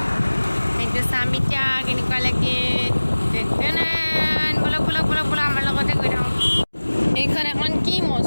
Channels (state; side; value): inverted; both; correlation -1.00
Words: এইটো চাম এতিয়া কেনেকুৱা লাগে। বলক বলক বলক বলক আমাৰ লগতে গৈ থাকক। এইখন এখন কি